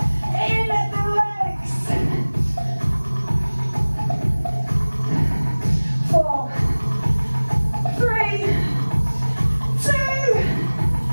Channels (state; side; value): inverted; both; correlation -1.00